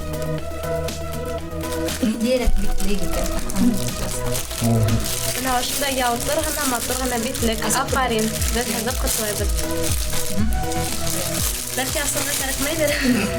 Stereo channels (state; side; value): identical; both; correlation 1.00